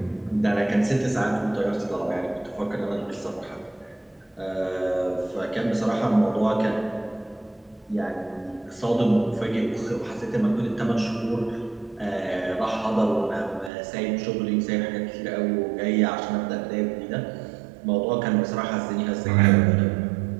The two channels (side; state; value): left; drops out; at 13.7 s